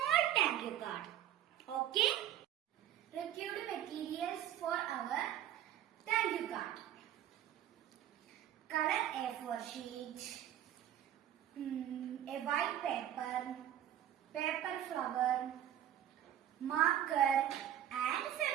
thank you card. Okay? Required materials for our thank you card. Color A4 sheet, a white paper, paper flower, marker and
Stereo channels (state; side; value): quieter; left; 11.4 dB